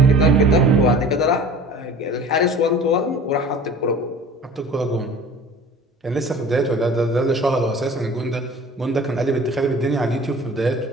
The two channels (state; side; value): normal; both; correlation 0.43